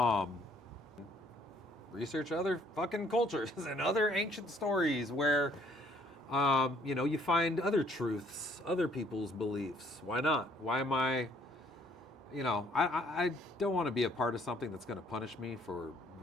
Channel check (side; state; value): both; normal; correlation 0.62